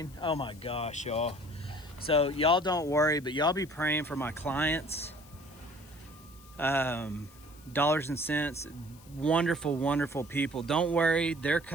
Oh my gosh, y'all. So y'all don't worry, but y'all be praying for my clients. Dollars and cents, wonderful people. Don't worry, they're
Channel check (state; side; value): noise; left; hiss, 24 dB below the sound